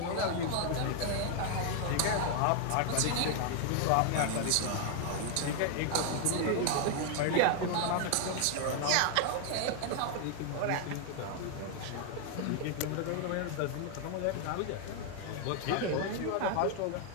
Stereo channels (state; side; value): different; both; correlation 0.00